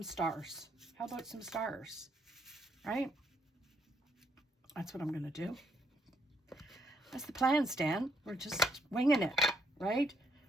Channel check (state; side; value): normal; both; correlation 0.73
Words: stars. How about some stars? Right? That's what I'm going to do. That's the plan, Stan. We're just winging it, right?